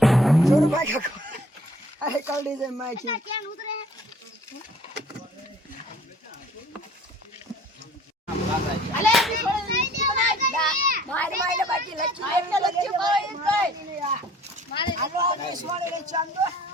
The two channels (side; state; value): both; normal; correlation 0.54